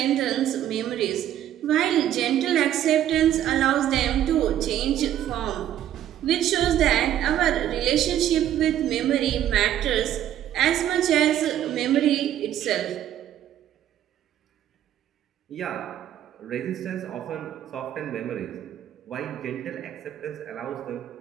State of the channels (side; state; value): left; quieter; 11.5 dB